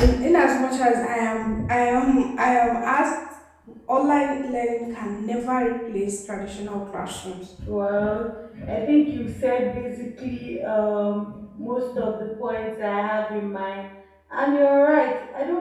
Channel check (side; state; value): both; identical; correlation 1.00